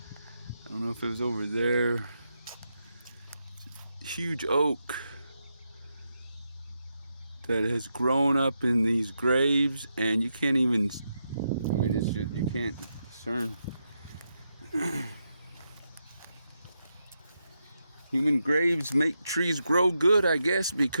don't know if it was over there. Huge oak that has grown up in these graves, and you can't even, I mean, it's just, you can't discern. Human graves make trees grow good, I guess,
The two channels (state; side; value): inverted; both; correlation -0.84